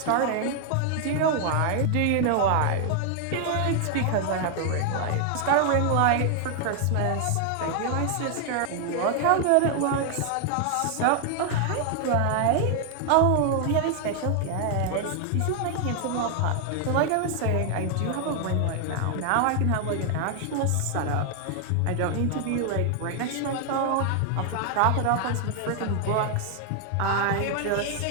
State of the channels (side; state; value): both; different; correlation 0.00